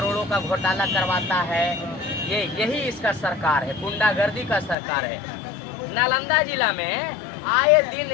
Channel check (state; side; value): drops out; right; at 4.8 s